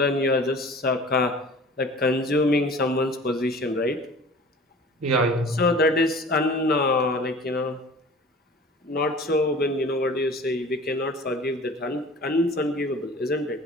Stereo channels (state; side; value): normal; both; correlation 0.44